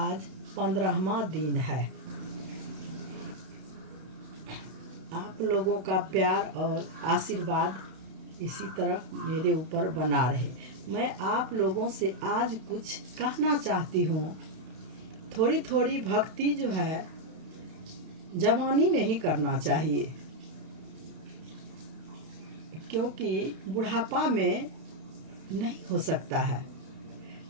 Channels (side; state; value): left; late; 31 ms